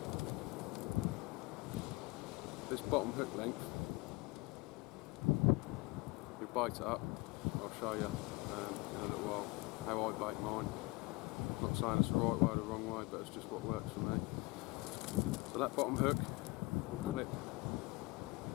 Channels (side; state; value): right; quieter; 24.4 dB